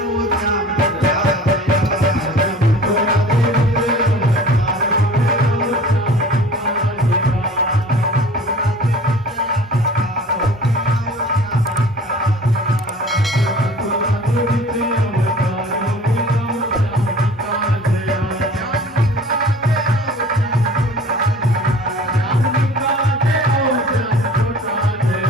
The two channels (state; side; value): normal; both; correlation 0.45